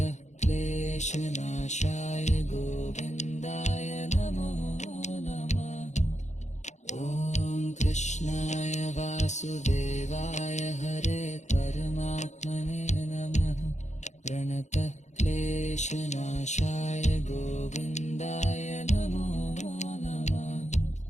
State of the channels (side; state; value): right; late; 0.34 ms